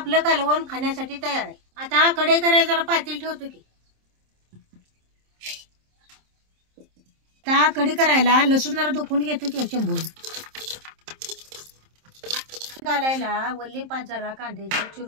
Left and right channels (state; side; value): late; left; 27 ms